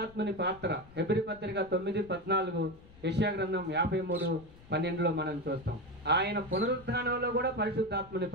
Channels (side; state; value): left; noise; rumble, 22 dB below the sound